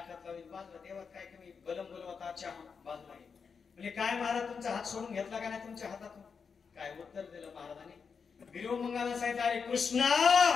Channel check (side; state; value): right; quieter; 5.8 dB